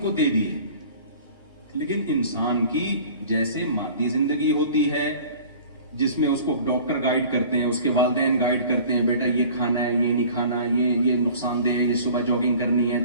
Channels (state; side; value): inverted; both; correlation -0.46